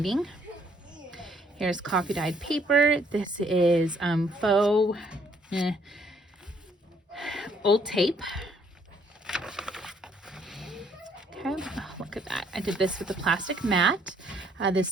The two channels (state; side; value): normal; both; correlation 0.66